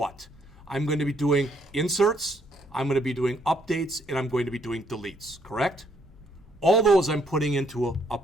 I'm going to be doing inserts, I'm going to be doing updates, and I'm going to be doing deletes, correct? All those I'm putting into a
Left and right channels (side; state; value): both; normal; correlation 0.69